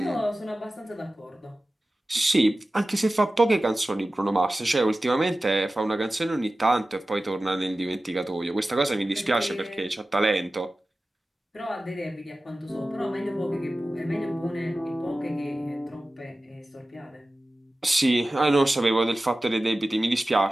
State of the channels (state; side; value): normal; both; correlation 0.96